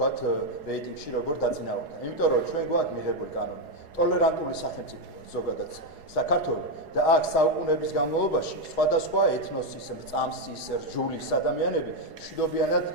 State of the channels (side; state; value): left; late; 4.8 ms